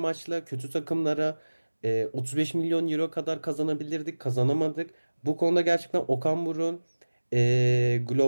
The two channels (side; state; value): both; inverted; correlation -1.00